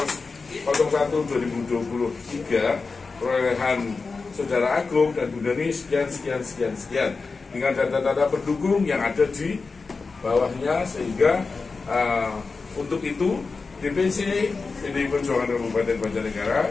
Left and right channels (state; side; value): quieter; right; 4.3 dB